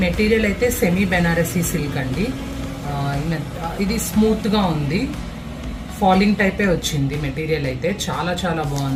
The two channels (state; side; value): identical; both; correlation 1.00